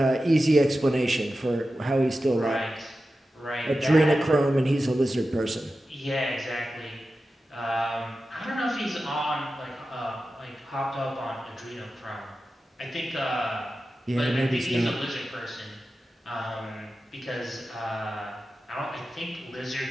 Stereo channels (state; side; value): normal; both; correlation 0.93